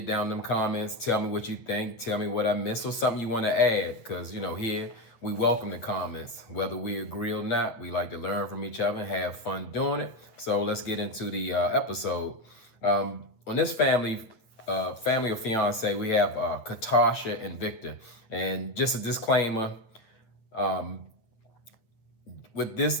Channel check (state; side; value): late; right; 8.7 ms